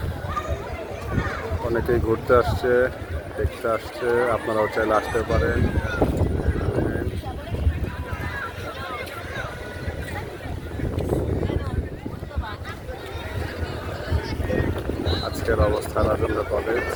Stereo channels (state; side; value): identical; both; correlation 1.00